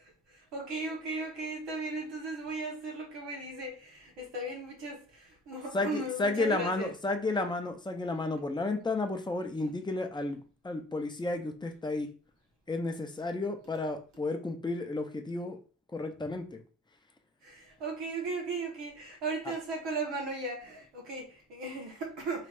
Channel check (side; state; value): both; normal; correlation 0.51